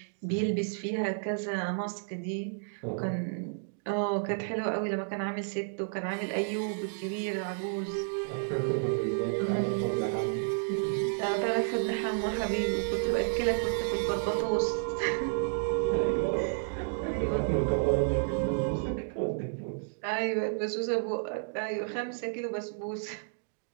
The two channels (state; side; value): silent; left; digital silence